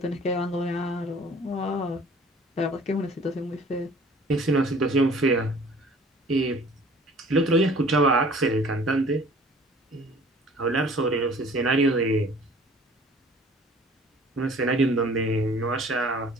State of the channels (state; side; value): normal; both; correlation 0.51